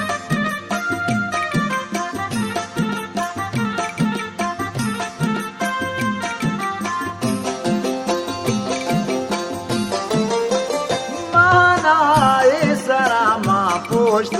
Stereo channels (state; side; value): identical; both; correlation 1.00